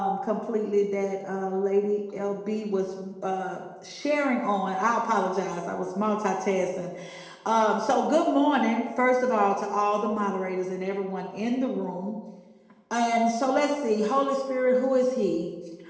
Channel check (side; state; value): both; identical; correlation 1.00